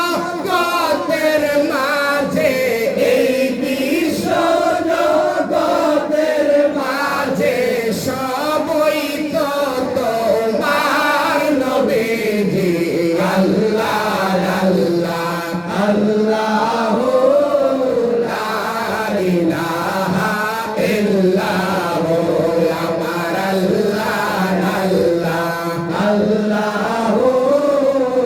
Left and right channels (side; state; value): both; identical; correlation 1.00